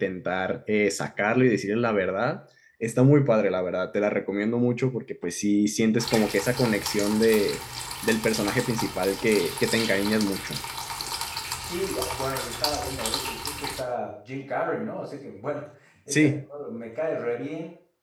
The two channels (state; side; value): identical; both; correlation 1.00